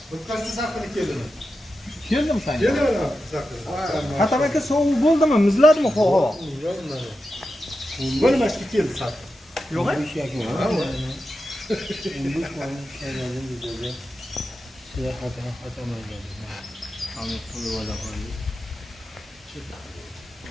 O'tkazsa saqilib keldimi? Keldim sen. Keldim saqilib. Hatam aka sovuq bo'ldimi? Muzladimi havo? Bo'lmashga keldi saqilib. Yo'q.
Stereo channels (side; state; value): both; normal; correlation 0.90